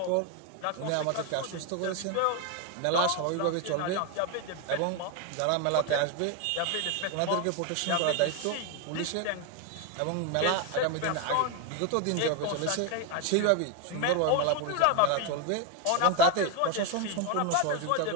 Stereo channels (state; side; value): different; both; correlation 0.01